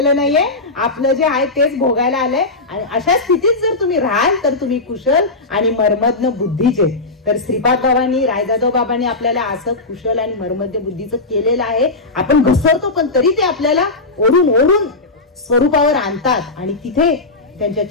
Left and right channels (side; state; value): right; quieter; 3.3 dB